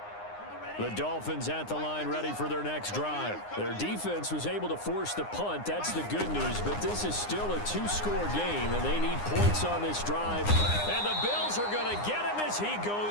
The Dolphins at the line ready for their next drive. Their defense was able to force the punt. That's the good news, but this is still a two-score game, and they need points on this drive. And the Bills are going to get him as he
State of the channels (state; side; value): late; right; 9.7 ms